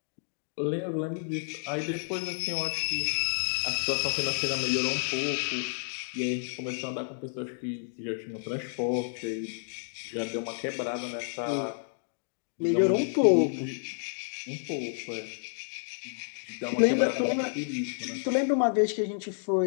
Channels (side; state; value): right; silent; digital silence